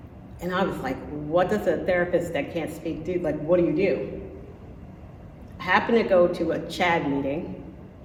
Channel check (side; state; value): both; identical; correlation 1.00